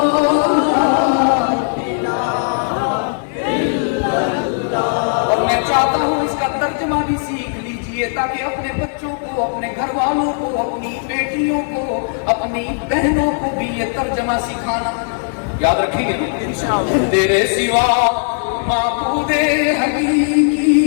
اور میں چاہتا ہوں اس کا ترجمہ بھی سیکھ لیجئے تاکہ اپنے بچوں کو، اپنے گھر والوں کو، اپنی بیٹیوں کو، اپنی بہنوں کو بھی یہ ترجمہ سکھانا۔ یاد رکھیں گے تیرے سوا معبود حقیقی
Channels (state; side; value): silent; right; digital silence